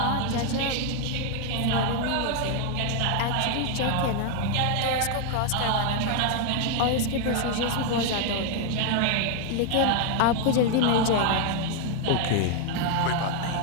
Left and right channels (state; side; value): different; both; correlation 0.00